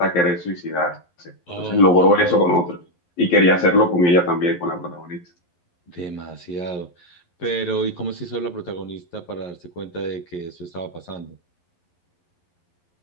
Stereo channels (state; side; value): late; right; 11 ms